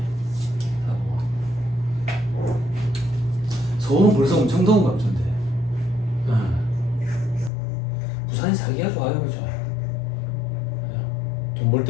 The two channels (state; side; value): drops out; right; at 7.5 s